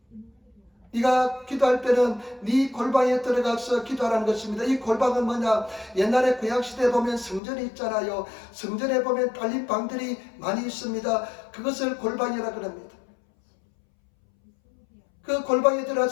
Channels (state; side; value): drops out; right; at 7.4 s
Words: 네가 기도할 때는 네 골방에 들어가서 기도하라는 것입니다. 이 골방은 뭐냐? 옛날에 구약시대에 보면 성전이 있잖아요. 성전에 보면 딸린 방들이 많이 있습니다. 그것을 골방이라 그럽니다. 그 골방에